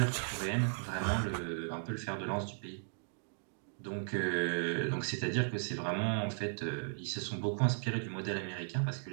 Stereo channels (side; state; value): left; silent; digital silence